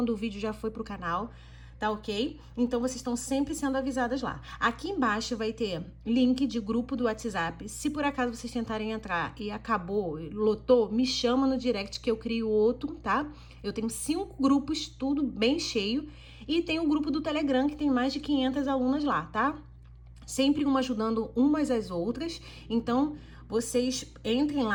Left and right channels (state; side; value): identical; both; correlation 1.00